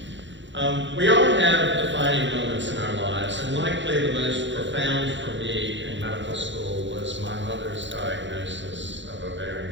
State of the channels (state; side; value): late; left; 0.54 ms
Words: We all have defining moments in our lives, and likely the most profound for me in medical school was my mother's diagnosis of